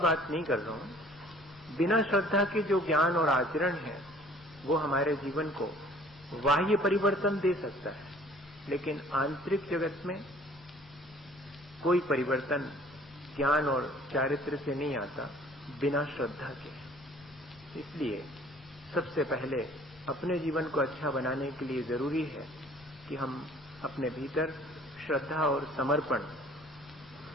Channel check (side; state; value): both; normal; correlation 0.53